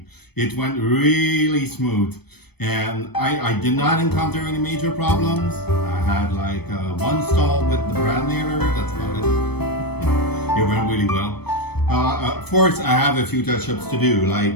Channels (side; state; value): right; late; 0.97 ms